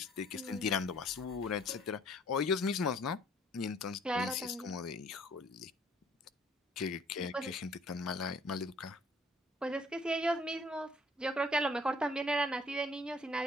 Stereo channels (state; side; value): normal; both; correlation 0.58